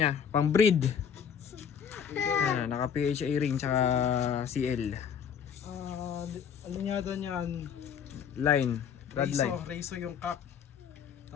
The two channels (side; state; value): right; quieter; 7.6 dB